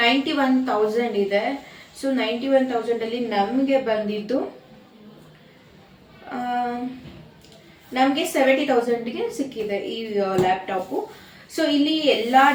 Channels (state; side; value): identical; both; correlation 1.00